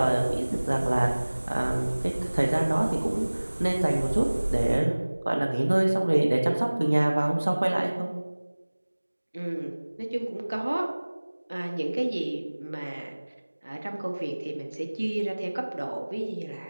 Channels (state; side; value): inverted; both; correlation -1.00